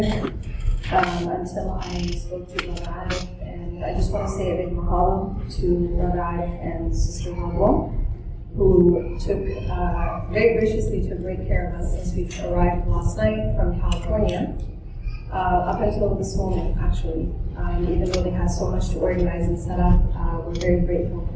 until I spoke to Brother Arif. And I just want to say a big mahalo to Brother Arif and Sister Marwa, who very graciously took great care of us since we arrived last night from California, up until this moment, actually. Even though they had so much to organize and set up, we're very grateful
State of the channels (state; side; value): identical; both; correlation 1.00